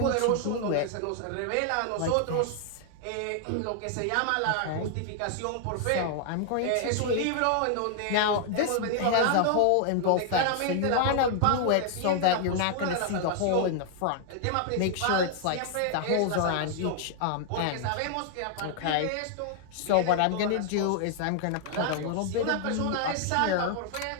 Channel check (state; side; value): different; both; correlation 0.00